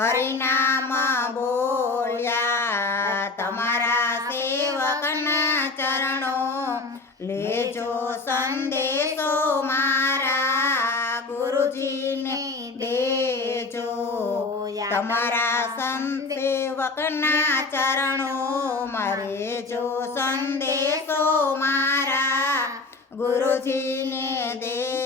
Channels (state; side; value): quieter; right; 3.6 dB